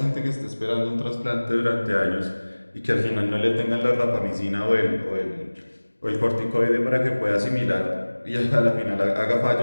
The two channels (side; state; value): both; inverted; correlation -1.00